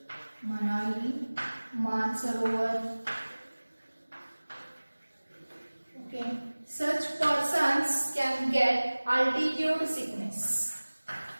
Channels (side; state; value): both; inverted; correlation -1.00